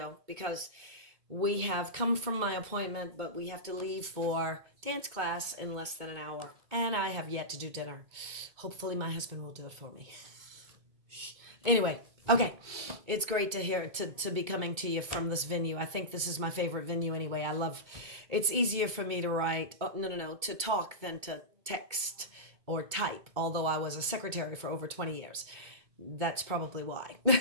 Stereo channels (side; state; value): left; late; 2.2 ms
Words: because we have come from my appointment, but we have to leave for dance class in less than an hour. And I have yet to do dinner. Hopefully my husband will do it for me. Anyway, okay. It's great to hear to be coming to you from this venue. I think this is my favorite venue anyway. It's easier for me to write, to talk than to text or type, although I was a secretary for over 20 years. That's probably why.